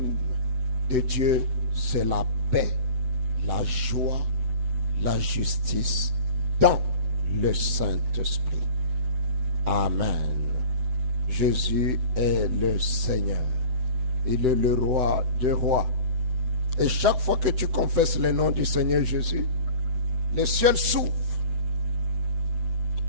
de Dieu, c'est la paix, la joie, la justice dans le Saint-Esprit. Amen. Jésus est le Seigneur. Il est le roi des rois. Et chaque fois que tu confesses le nom du Seigneur Jésus, le ciel s'ouvre.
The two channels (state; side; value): late; left; 7.9 ms